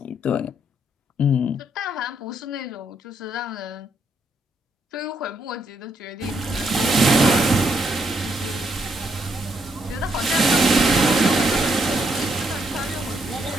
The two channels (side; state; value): both; normal; correlation 0.75